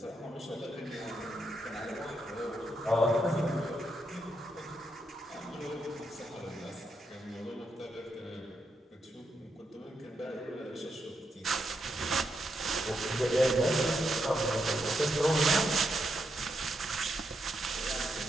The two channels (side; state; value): both; normal; correlation 0.82